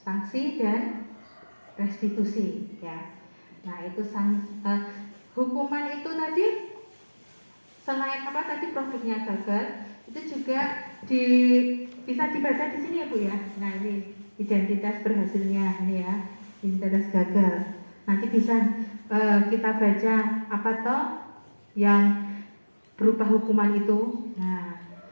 sanksi dan restitusi ya. Nah, itu hukuman itu tadi selain tadi produknya gagal, itu juga bisa dibaca di sini ya Bu ya. Nah, ini identitas berhasilnya ini ya, identitas gagal. Nanti bisa kita baca apa toh yang berupa hukuman itu. Nah,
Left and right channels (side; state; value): both; inverted; correlation -1.00